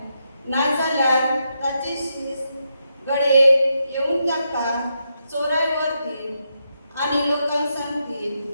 नाजाल्यार ताचे शीस गडे येवन ताका चोराय व्हरतील आनी लोकांक सांगतील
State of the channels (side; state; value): both; inverted; correlation -0.83